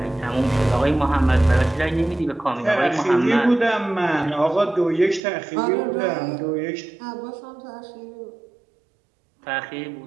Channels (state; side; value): drops out; left; at 5.2 s